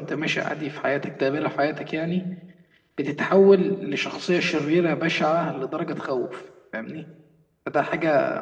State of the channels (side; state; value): both; identical; correlation 1.00